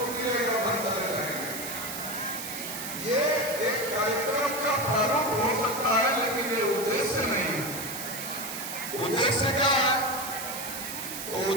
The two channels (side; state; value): right; noise; hiss, 7 dB below the sound